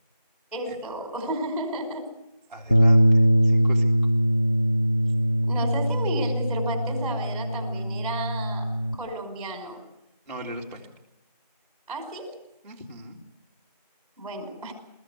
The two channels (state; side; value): inverted; both; correlation -0.90